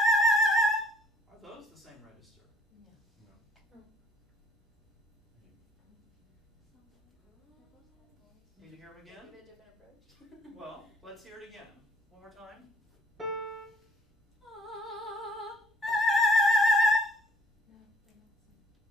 hear them again? Give it a different approach. Well, let's hear it again. One more time. No,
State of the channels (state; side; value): normal; both; correlation 0.60